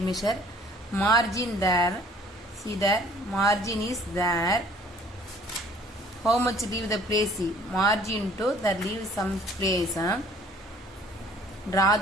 Margin there. See there, margin is there. How much leave the place? Margin to the leave some place. Draw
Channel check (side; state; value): both; normal; correlation 0.55